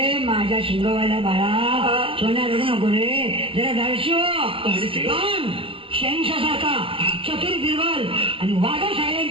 माझ्या शिंगवाल्या बाळा सोन्या रडू नको रे. जरा धाडशी हो. शेंगशासारखा चतुर बिरबल आणि वाघा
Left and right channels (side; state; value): left; late; 0.26 ms